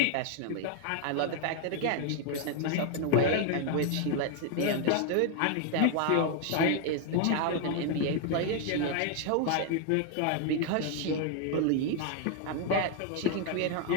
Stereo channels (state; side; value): different; both; correlation 0.00